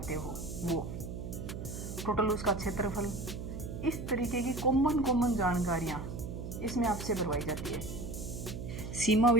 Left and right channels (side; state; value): right; noise; hum, 7 dB below the sound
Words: हो वो, टोटल उसका क्षेत्रफल, इस तरीके की कॉमन जानकारियाँ इसमें आपसे भरवाई जाती है। सीमा